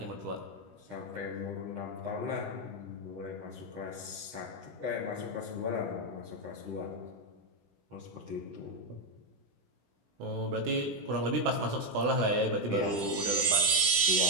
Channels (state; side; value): late; left; 16 ms